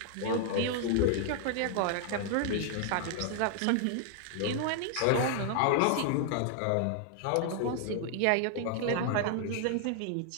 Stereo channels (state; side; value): different; both; correlation 0.00